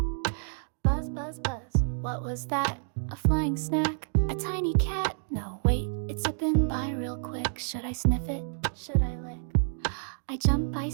Buzz, buzz, buzz, what was that? A flying snack? A tiny cat? No, wait, it's zipping by real quick. Should I sniff it? Should I lick? I jump, I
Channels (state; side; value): silent; left; digital silence